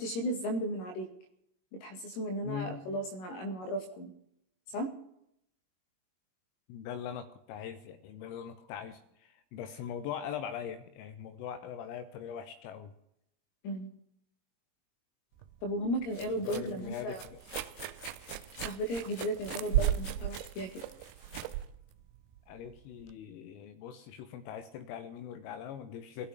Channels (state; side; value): late; right; 22 ms